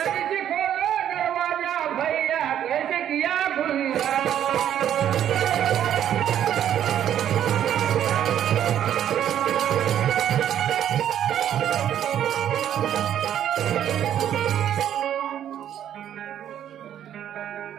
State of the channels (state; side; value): quieter; left; 10.4 dB